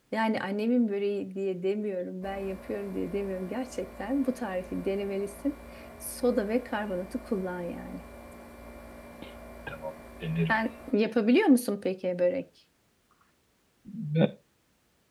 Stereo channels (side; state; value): both; identical; correlation 1.00